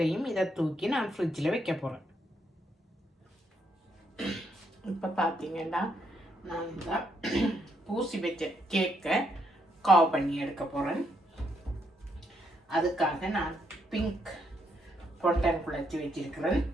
இதை தூக்கி நான் ஃப்ரிட்ஜில் வைக்க போகிறேன். இப்போ பார்த்தீங்கன்னா நான் இந்த பூசி வச்ச கேக்கை கவ் பண்ணி எடுக்க போகிறேன். அதுக்காக நான் பிங்க் பொண்டன் குழச்சி வச்சிருக்கிறேன்.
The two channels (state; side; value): normal; both; correlation 0.75